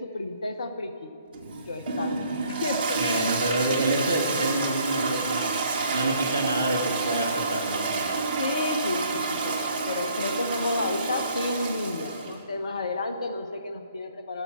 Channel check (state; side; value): inverted; both; correlation -0.62